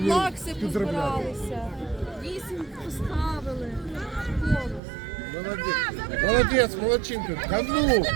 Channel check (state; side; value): drops out; left; at 4.8 s